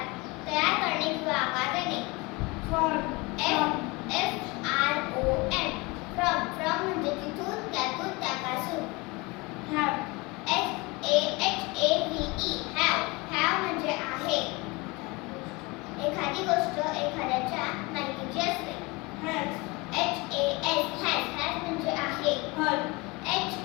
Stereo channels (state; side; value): quieter; right; 25.3 dB